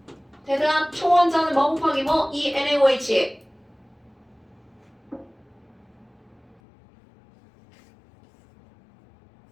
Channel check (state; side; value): drops out; right; at 6.6 s